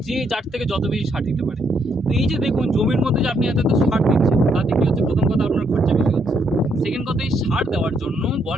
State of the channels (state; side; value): normal; both; correlation 0.74